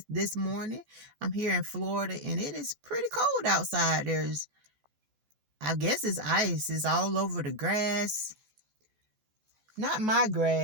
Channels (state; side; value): late; left; 14 ms